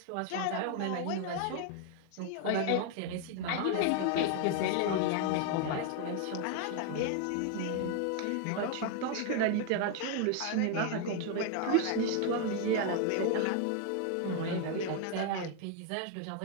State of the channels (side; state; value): both; different; correlation 0.00